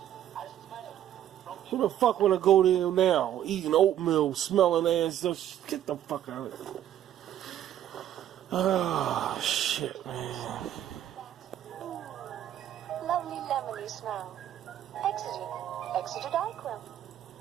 Who the fuck wanna go there now? Eating oatmeal, smelling ass. Just get the fuck out of here. Oh, shit, man. Lovely lemony smell. Exeter Darkroom.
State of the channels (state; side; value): quieter; left; 11.3 dB